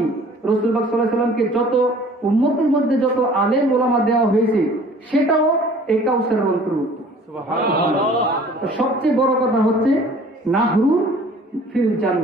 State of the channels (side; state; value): both; normal; correlation 0.51